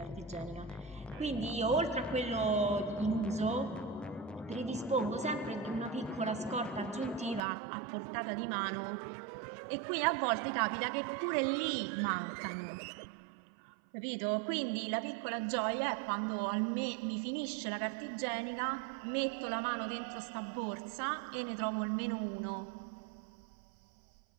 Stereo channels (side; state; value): left; drops out; at 7.4 s